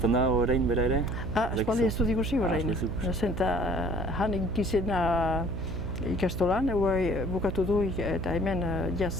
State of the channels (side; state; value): right; noise; hum, 5 dB below the sound